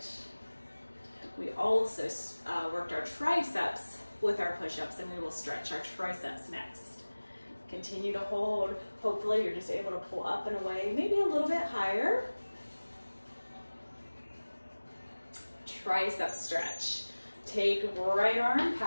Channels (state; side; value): inverted; both; correlation -1.00